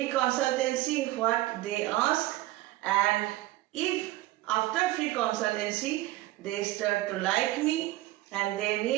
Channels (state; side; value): quieter; left; 17.1 dB